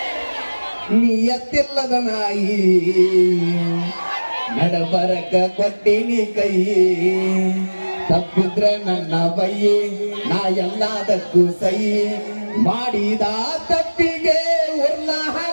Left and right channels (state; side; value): inverted; both; correlation -1.00